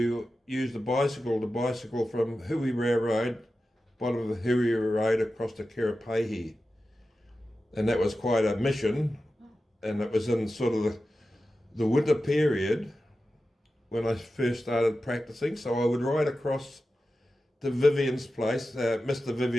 use the bicycle from Hui Road, bottom of the Hui Road across to Kerepehi. And that was quite a mission, and it was in sort of the winter period when I first started practicing. So I would ride across to Vivian's place, Mr.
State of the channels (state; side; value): normal; both; correlation 0.93